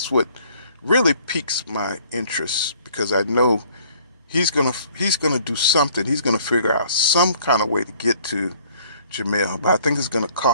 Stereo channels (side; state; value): both; inverted; correlation -0.57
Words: what really piques my interest, because I know he's gonna do something. He's gonna figure out some kind of way to get to Jermell, but I think it's gonna